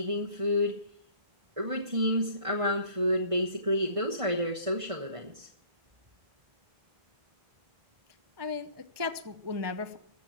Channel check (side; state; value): left; late; 1.5 ms